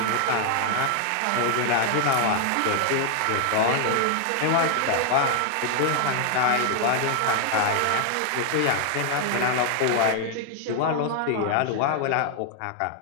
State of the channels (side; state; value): both; different; correlation 0.00